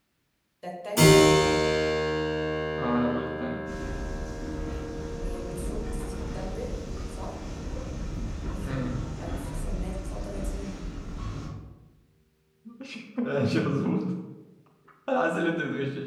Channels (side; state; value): both; identical; correlation 1.00